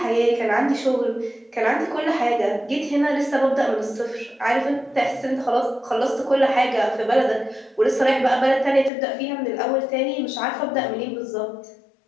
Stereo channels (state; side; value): drops out; right; at 8.9 s